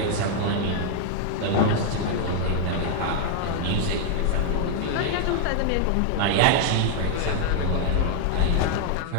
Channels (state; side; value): different; both; correlation 0.00